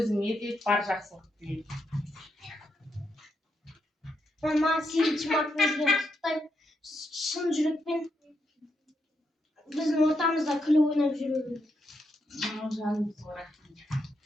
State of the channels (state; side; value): normal; both; correlation 0.81